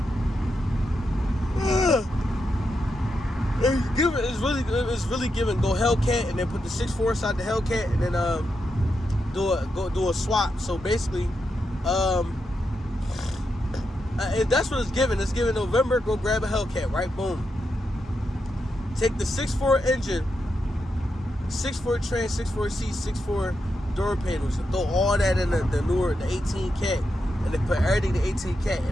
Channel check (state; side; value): normal; both; correlation 0.85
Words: It's really giving go Hellcat and then put the 6.4 inside the Hellcat and then do a swap. So basically, that's what it's giving. It's giving November. Go grab a Hellcat, right? Boom. Take the 6.4 engine, 6.4 trans, 6.4 seats, 6.4 door panels, and throw all that in the newer, the 18 cat, and then put everything the 18 cat